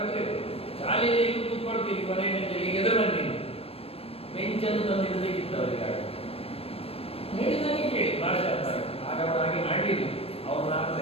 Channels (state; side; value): late; right; 0.28 ms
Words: ಶಾಲೆಯಲ್ಲಿ ಈಗ ಕೂತ್ಕೊಳ್ತೀವಿ, ಕೊನೆಯ ಬೆಂಚಲ್ಲಿ ಈಗ ಎದುರು ಬನ್ನಿ ಬೆಂಚನ್ನು ತಂದಿಡಬೇಕಿತ್ತು ಅವರಿಗೆ. ಹೇಳಿದಾಗೆ ಕೇಳಿ ಭಾಷೆ ಅರ್ಥ ಆಯ್ತು. ಆಗ ಅವರು ಹಾಗೆ ಮಾಡಲಿಲ್ಲ, ಅವ್ರು ಅರ್ಥ